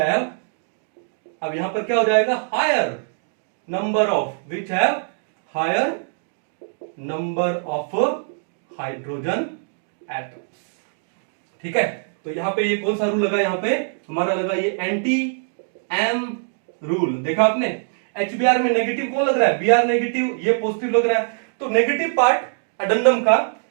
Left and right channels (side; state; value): left; silent; digital silence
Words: अब यहां पर क्या हो जाएगा, higher number of, which have higher number of hydrogen atoms. ठीक है, तो यहां पे ये कौन सा रूल लगा, यहां पे हमारा लगा ये एंटी एम रूल। देखा आपने, HBr में नेगेटिव कौन लग रहा है, Br नेगेटिव, ये पॉजिटिव लग रहा है। तो नेगेटिव पार्ट अडेंडम का